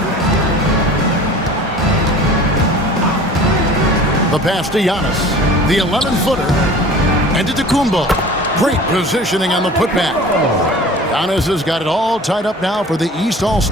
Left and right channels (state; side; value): normal; both; correlation 0.43